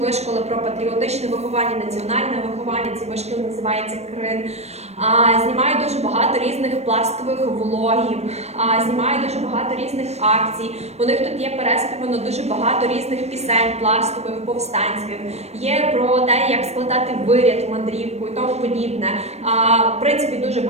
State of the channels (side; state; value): left; late; 0.31 ms